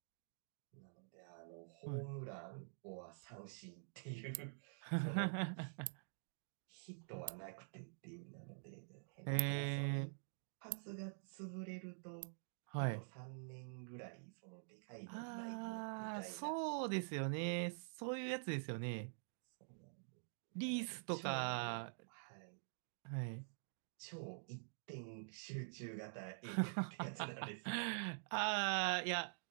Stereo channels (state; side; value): silent; left; digital silence